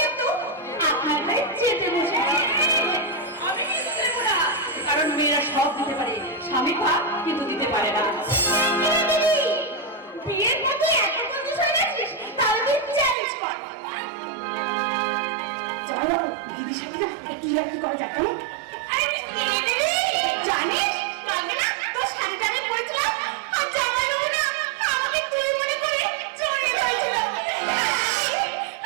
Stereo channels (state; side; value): drops out; left; at 13.2 s